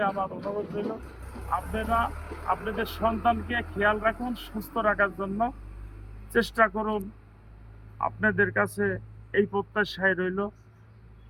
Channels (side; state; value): both; identical; correlation 1.00